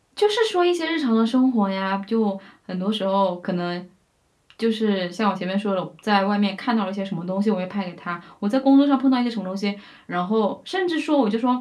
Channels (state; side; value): identical; both; correlation 1.00